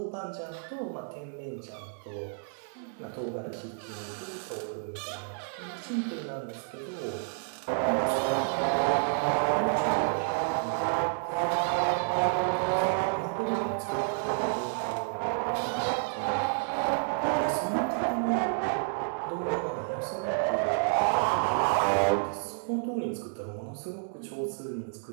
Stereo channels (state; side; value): silent; left; 58 dB below the other